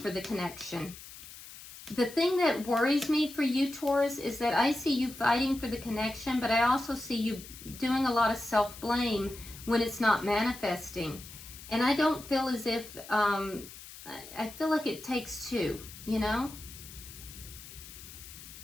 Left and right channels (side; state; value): left; noise; hiss, 15 dB below the sound